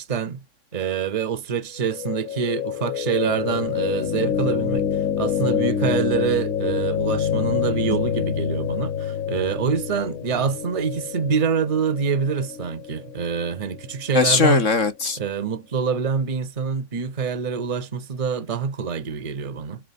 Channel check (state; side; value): late; right; 3.6 ms